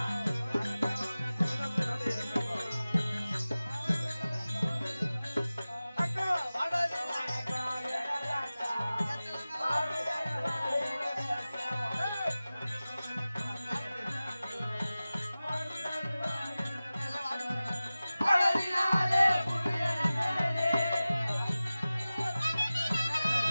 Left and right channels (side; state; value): both; inverted; correlation -0.97